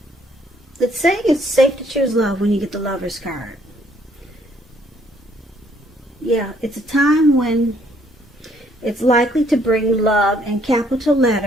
it's saying it's safe to choose love when you get the Lover's card. Yeah, it's a time when it's likely to bring love in capital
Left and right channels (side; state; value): both; normal; correlation 0.66